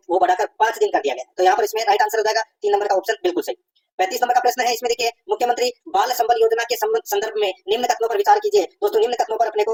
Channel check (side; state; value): both; identical; correlation 1.00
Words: वो बढ़ाकर 5 दिन कर दिया गया। तो यहाँ पर इसमें राइट आंसर हो जाएगा 3 नंबर का ऑप्शन बिल्कुल सही। 35 नंबर का प्रश्न है, इसमें देखिए मुख्यमंत्री बाल संबल योजना के संदर्भ में निम्न कथनों पर विचार कीजिए। दोस्तों निम्न कथनों पर अपने